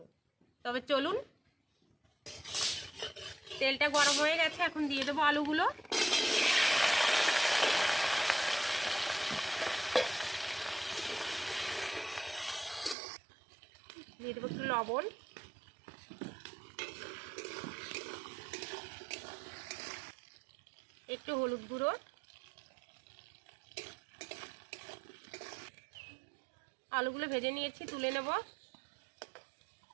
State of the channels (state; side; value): drops out; left; at 13.0 s